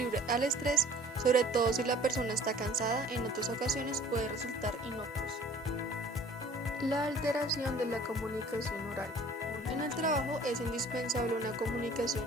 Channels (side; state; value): both; normal; correlation 0.51